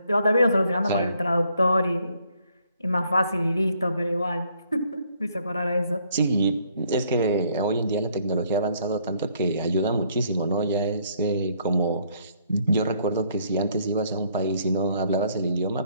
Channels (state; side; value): inverted; both; correlation -0.66